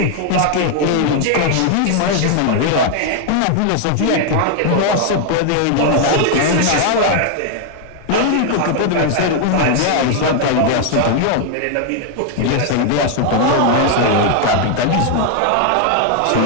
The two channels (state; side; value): different; both; correlation 0.00